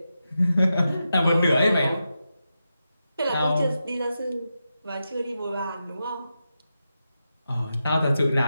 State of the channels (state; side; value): inverted; both; correlation -0.89